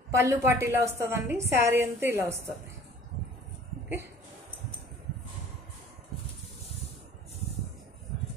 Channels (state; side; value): normal; both; correlation 0.49